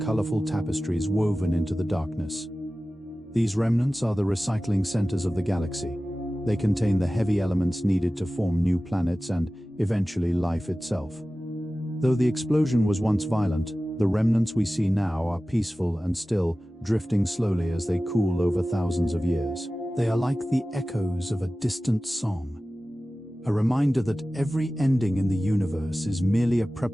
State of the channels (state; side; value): normal; both; correlation 0.96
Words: tapestries woven into the darkness. These remnants are the recycling centers of the galaxy. They contain the heavy elements needed to form new planets and, eventually, life itself. Though the explosion was once violent, The remnants we see now are peaceful and still, drifting slowly as they cool over thousands of years. They are like the echoes of a distant song, a reminder that every ending in the universe is merely a